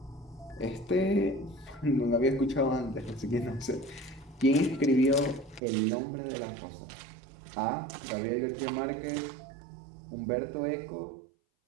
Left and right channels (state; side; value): drops out; left; at 5.6 s